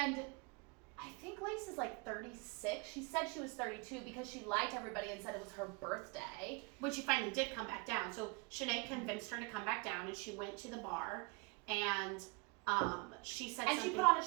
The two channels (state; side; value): quieter; left; 30.1 dB